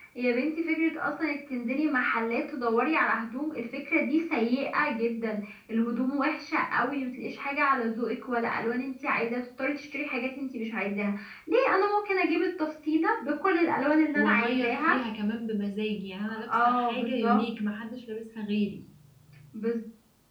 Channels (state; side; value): identical; both; correlation 1.00